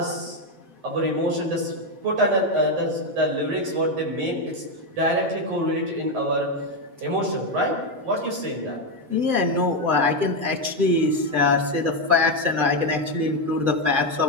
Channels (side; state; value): left; late; 7.8 ms